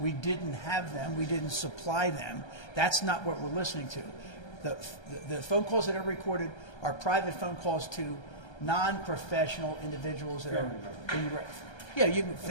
didn't have them. We didn't supply them. That's not what we're listening to. The phone calls that are recorded are private phone calls to non-professional individuals that are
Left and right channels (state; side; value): late; right; 1.3 ms